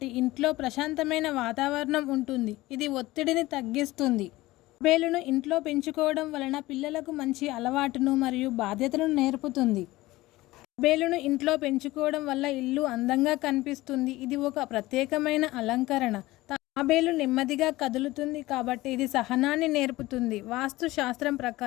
ఇంట్లో ప్రశాంతమైన వాతావరణం ఉంటుంది, ఇది ఒత్తిడిని తగ్గిస్తుంది. తాబేలును ఇంట్లో పెంచుకోవడం వలన పిల్లలకు మంచి అలవాటును మరియు బాధ్యతలను నేర్పుతుంది. తాబేలును ఇంట్లో పెంచుకోవడం వల్ల ఇల్లు అందంగా కనిపిస్తుంది, ఇది ఒక ప్రత్యేకమైన అలంకరణ. తాబేలు నెమ్మదిగా కదులుతుంది కాబట్టి ఇది సహనాన్ని నేర్పుతుంది. వాస్తు శాస్త్రం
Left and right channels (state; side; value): quieter; right; 18.6 dB